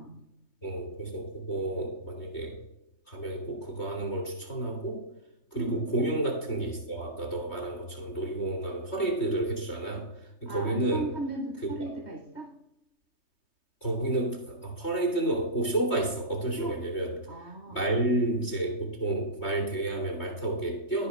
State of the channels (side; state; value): right; late; 3.2 ms